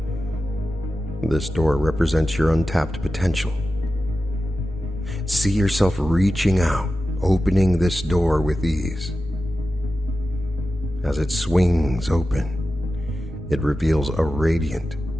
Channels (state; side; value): normal; both; correlation 0.93